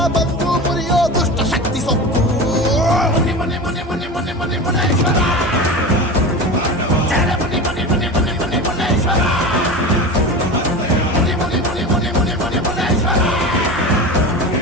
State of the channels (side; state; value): both; normal; correlation 0.28